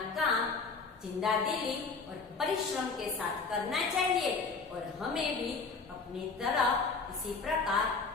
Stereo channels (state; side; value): quieter; right; 4.4 dB